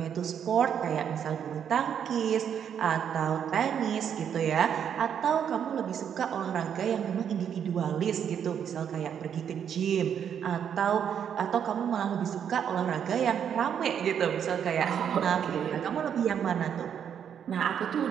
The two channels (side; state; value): left; quieter; 8.4 dB